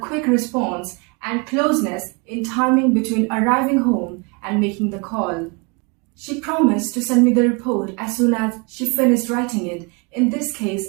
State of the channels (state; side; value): quieter; left; 30.8 dB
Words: response and closeness in timing between arriving home and making the call. She promised to send me the report as soon as she finished writing it. In this